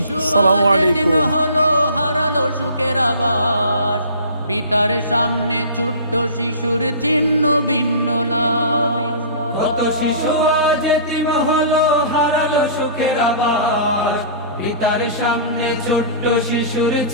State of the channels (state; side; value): inverted; both; correlation -0.40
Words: আসসালামু আলাইকুম। হলো হারালো সুখের আবাস, পিতার সামনে ছোট্ট শিশুর চিহ্ন ভিন্ন লাশ। কত শিশু আজ এতিম হলো হারালো সুখের আবাস, পিতার সামনে ছোট্ট শিশুর